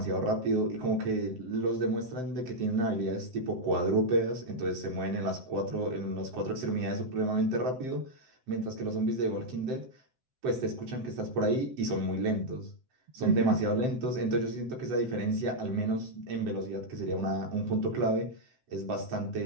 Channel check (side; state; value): left; late; 7.7 ms